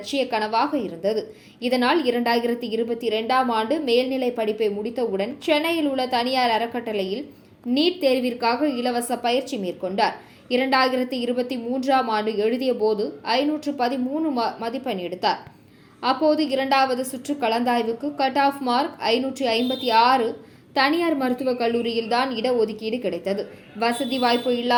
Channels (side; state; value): both; identical; correlation 1.00